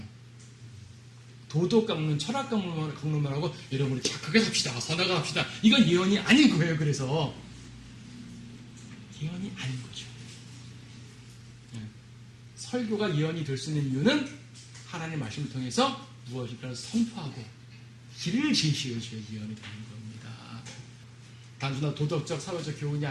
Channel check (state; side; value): identical; both; correlation 1.00